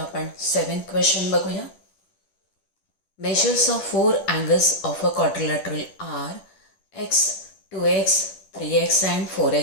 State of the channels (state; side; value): late; right; 10 ms